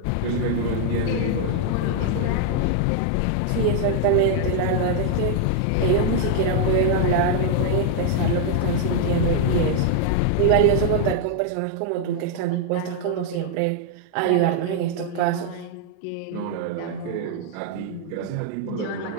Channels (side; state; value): both; different; correlation -0.01